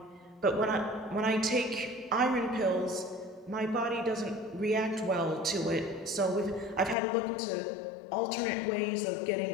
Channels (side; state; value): right; drops out; at 7.0 s